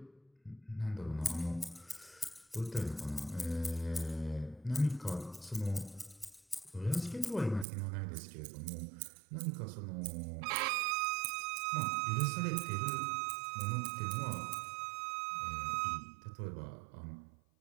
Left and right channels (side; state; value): left; drops out; at 7.7 s